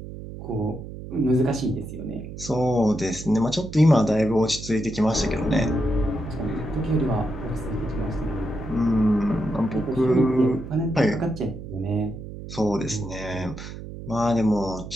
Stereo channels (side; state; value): right; noise; hum, 11 dB below the sound